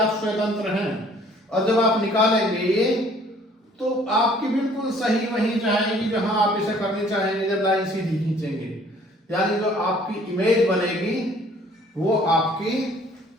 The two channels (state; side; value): normal; both; correlation 0.57